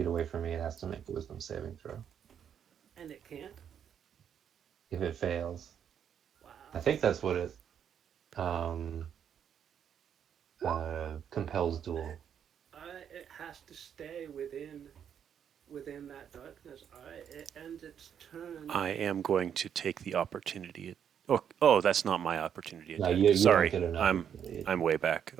away from me, it has to make a wisdom saving throw. And it can't. If it fails, Wow. I think that's what it compels duel. It has to stay within that darkness. Alright, it ends its turn. I am going to take the opportunity. Oh, that's not my opportunity No, attack. you Sorry, don't get an I'm opportunity. way back.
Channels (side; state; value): left; quieter; 8.5 dB